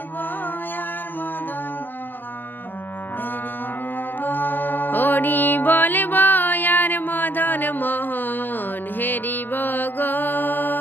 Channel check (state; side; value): late; right; 0.091 ms